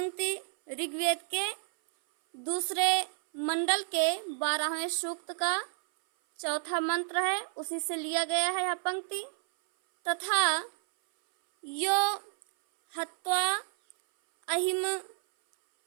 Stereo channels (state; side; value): silent; left; 57 dB below the other